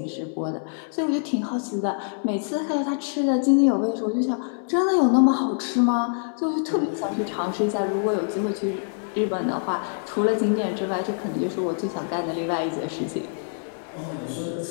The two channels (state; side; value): silent; right; 61 dB below the other